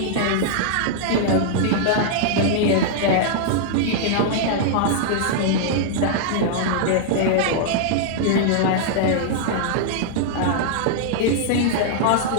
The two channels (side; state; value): both; different; correlation -0.01